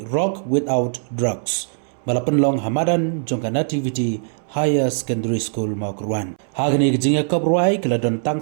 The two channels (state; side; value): silent; left; 65 dB below the other